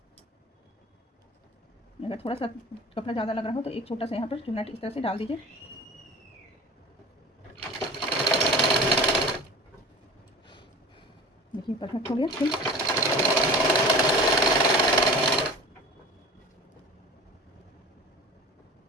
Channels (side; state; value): both; normal; correlation 0.38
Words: अगर थोड़ा सा कपड़ा ज़्यादा लग रहा हो तो एक छोटा सा यहाँ पर चुन्ना इस तरह से डाल दीजिए। देखिए परफेक्ट हो गया। ठीक,